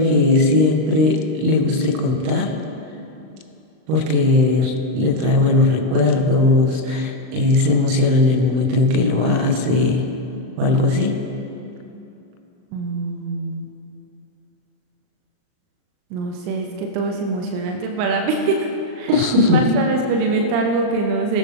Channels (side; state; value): left; late; 39 ms